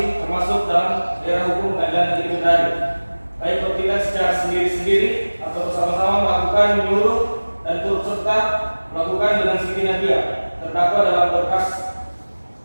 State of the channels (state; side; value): inverted; both; correlation -1.00